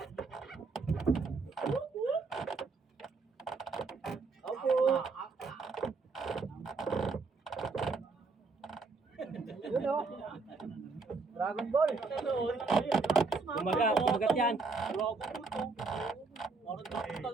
Dragon Ball. Kumagat yan.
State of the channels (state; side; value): quieter; left; 4.1 dB